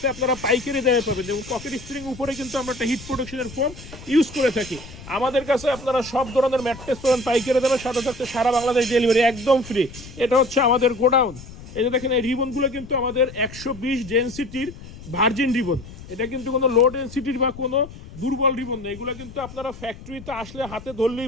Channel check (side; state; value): left; noise; rumble, 16 dB below the sound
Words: আপনারা পাইকারি দামে পাবেন। এবং পকেট স্প্রিং উপরে কিন্তু আমরা একটা হিট প্রোটেকশনের ফোম ইউজ করে থাকি। আমাদের কাছে আপনারা সব ধরনের ম্যাট্রেস পাবেন পাইকারি দামে, সাথে থাকতে সারা বাংলাদেশ ডেলিভারি একদম ফ্রি। এটা হচ্ছে আমাদের গোডাউন। এই যে দেখেন, এই রিবনগুলো কিন্তু আমাদের 120 ডেনসিটির ভার্জিন রিবন। এটা কিন্তু কোনো লো ডেনসিটির বা কোনো দুর্বল রিবন নেই। এগুলো কিন্তু আপনারা ফ্যাক্টরিতে আসলে হাতে